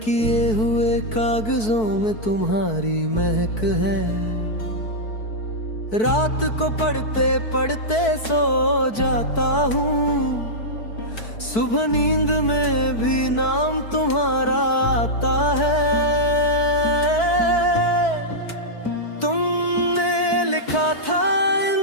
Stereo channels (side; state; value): right; late; 4.6 ms